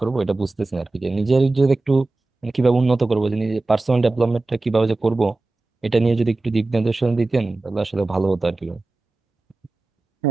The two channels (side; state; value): left; quieter; 3.2 dB